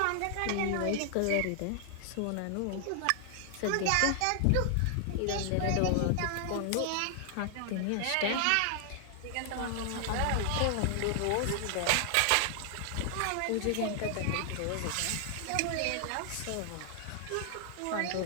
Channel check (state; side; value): different; both; correlation 0.00